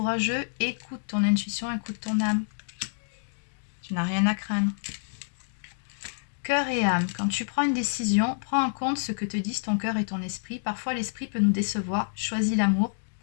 écoute ton intuition, écoute ton âme. Tu n'as rien à craindre. Cœur et âme. Quand tu prends une décision, prends en compte ce que te disent ton cœur et ton esprit. Parfois, l'esprit peut nous décevoir. Choisis l'amour,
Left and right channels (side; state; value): right; silent; digital silence